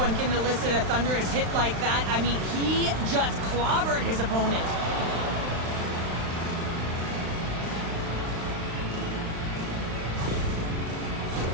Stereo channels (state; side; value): late; left; 35 ms